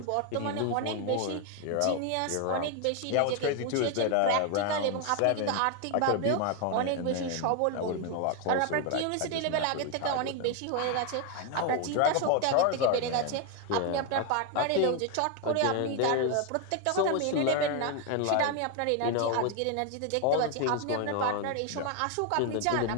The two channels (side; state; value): both; different; correlation 0.01